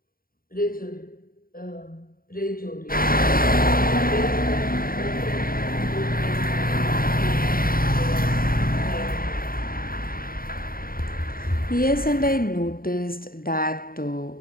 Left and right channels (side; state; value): right; late; 0.42 ms